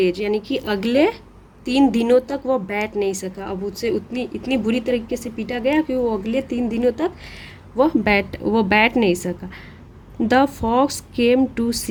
यानी कि अगले 3 दिनों तक वह बैठ नहीं सका। अब उससे इतनी बुरी तरीके से पीटा गया कि वो अगले 3 दिनों तक वह बैठ नहीं सका। The fox came to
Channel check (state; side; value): identical; both; correlation 1.00